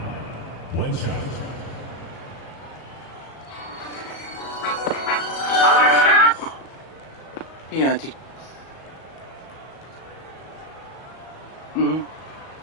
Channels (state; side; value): late; right; 37 ms